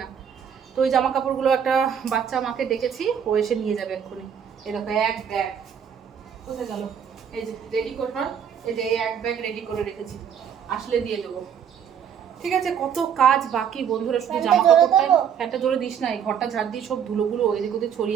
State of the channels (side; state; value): left; quieter; 8.1 dB